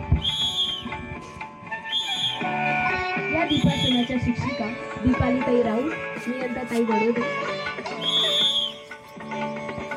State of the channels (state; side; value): identical; both; correlation 1.00